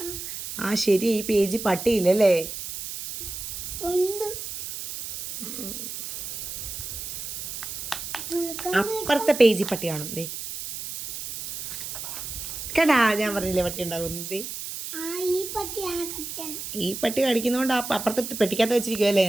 ശരി. ഈ പേജ് പട്ടിയില്ലല്ലേ? അപ്പുറത്തെ പേജ് പട്ടിയാണോ? ദേ കേട്ടാ, ഞാൻ പറഞ്ഞില്ലേ പട്ടി ഉണ്ടാകുന്നത്. ഈ പട്ടി കടിക്കുന്നോണ്ട് അപ്പുറത്തെ പെട്ടിക്കകത്ത് വെച്ചിരിക്കുവല്ലേ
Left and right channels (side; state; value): right; noise; hiss, 7 dB below the sound